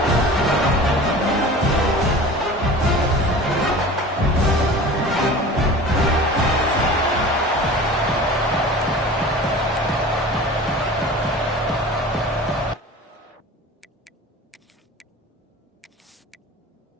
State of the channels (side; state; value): both; normal; correlation 0.38